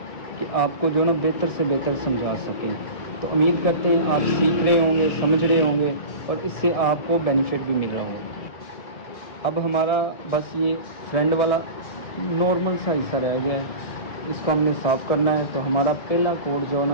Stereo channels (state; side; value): late; right; 1.7 ms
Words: कि आपको जो ना बेहतर से बेहतर समझा सकें। तो उम्मीद करते हैं आप सीख रहे होंगे, समझ रहे होंगे और इससे आपको बेनिफिट भी मिल रहा होगा। अब हमारा बस ये फ्रंट वाला नॉर्मल सा हिस्सा रह गया है, इसको हमने साफ़ करना है। तो हमारा पहला कोट जो है